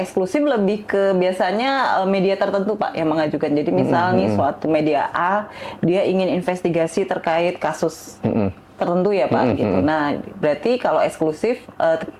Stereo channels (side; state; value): both; identical; correlation 1.00